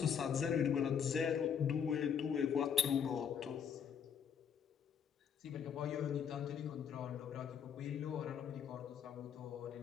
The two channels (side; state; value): right; quieter; 7.6 dB